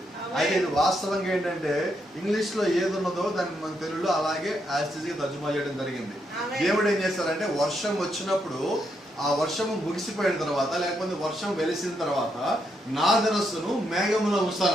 అయితే ఇది వాస్తవంగా ఏంటంటే ఇంగ్లీష్ లో ఏది ఉన్నదో దాన్ని మన తెలుగులో అలాగే యాస్టిజ్ గా తర్జుమా చేయడం జరిగింది. దేవుడు ఏం చేస్తారంటే వర్షం వచ్చినప్పుడు ఆ వర్షము ముగిసిపోయిన తర్వాత లేకపోతే వర్షం వెలిసిన తర్వాత నా ధనస్సును మేఘములో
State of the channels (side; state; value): both; normal; correlation 0.79